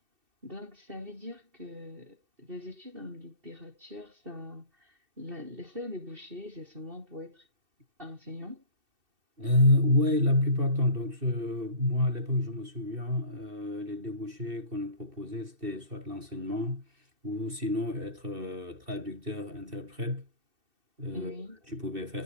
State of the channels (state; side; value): late; left; 2.7 ms